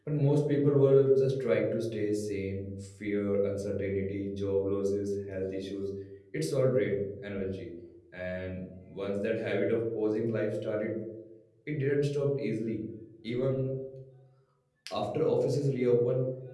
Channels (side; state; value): both; identical; correlation 1.00